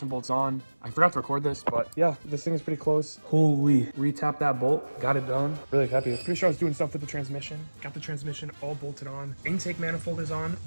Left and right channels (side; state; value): both; inverted; correlation -1.00